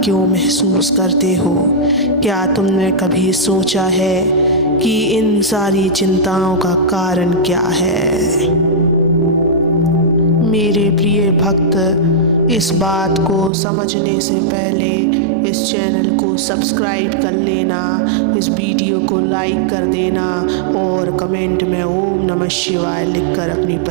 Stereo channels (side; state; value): left; drops out; at 13.5 s